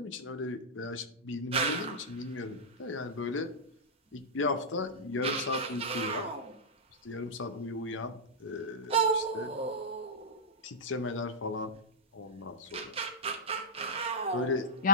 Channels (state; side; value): normal; both; correlation -0.10